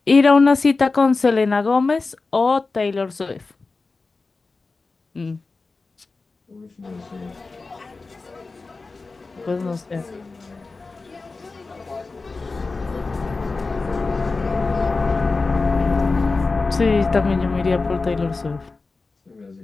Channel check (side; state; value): right; quieter; 3.8 dB